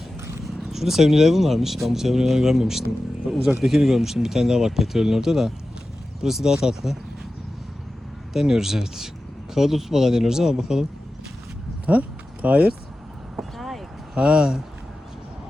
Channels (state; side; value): normal; both; correlation 0.94